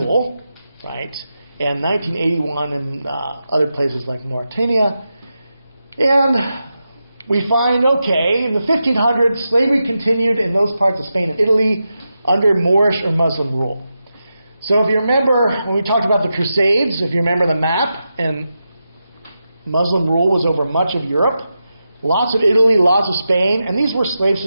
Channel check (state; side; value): inverted; both; correlation -0.89